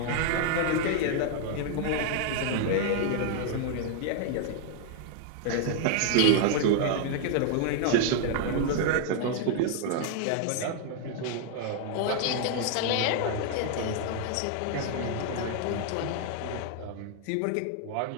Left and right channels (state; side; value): different; both; correlation 0.00